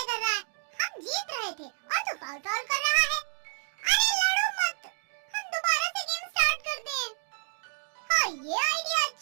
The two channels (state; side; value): silent; left; digital silence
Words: कर रहा है? हम जीत रहे थे और तू फाउल कर रहा है। अरे लड़ो मत, हम दोबारा से गेम स्टार्ट करते हैं। हाँ, ये आइडिया